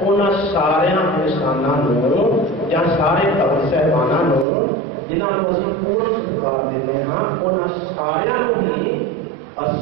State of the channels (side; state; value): left; drops out; at 4.5 s